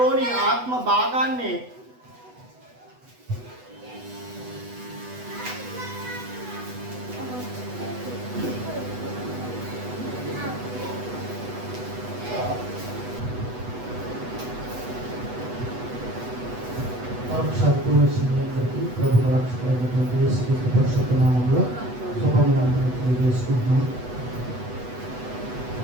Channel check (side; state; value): left; late; 8.1 ms